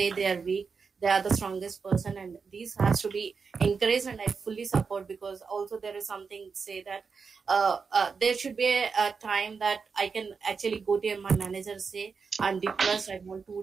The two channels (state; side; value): quieter; left; 5.3 dB